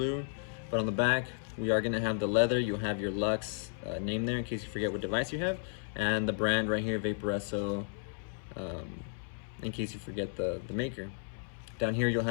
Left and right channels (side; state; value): right; silent; 55 dB below the other